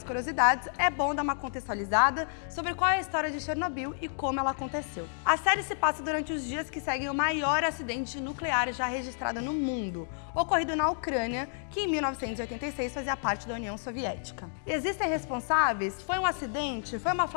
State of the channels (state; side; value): silent; right; digital silence